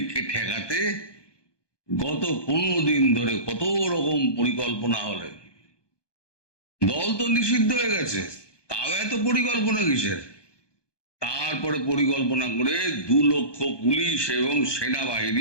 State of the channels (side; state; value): right; late; 1.2 ms